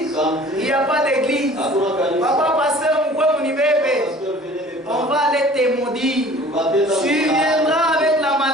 il n'y a pas d'église. Papa, pasteur, on va aller te maudire. Tu viendras avec la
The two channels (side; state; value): both; normal; correlation 0.48